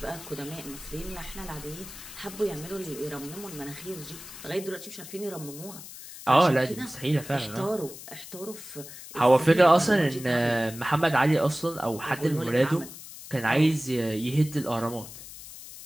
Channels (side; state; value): left; noise; hiss, 14 dB below the sound